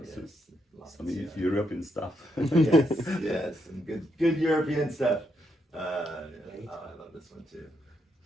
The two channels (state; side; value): normal; both; correlation 0.79